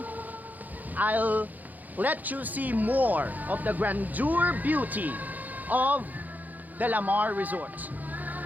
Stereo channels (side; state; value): left; late; 0.082 ms